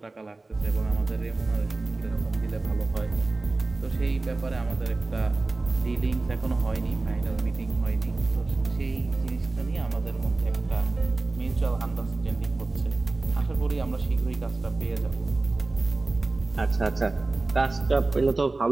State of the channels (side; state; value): left; quieter; 3.3 dB